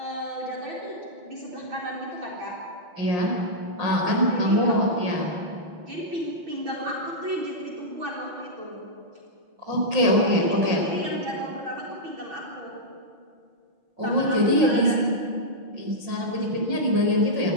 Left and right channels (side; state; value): left; late; 6.1 ms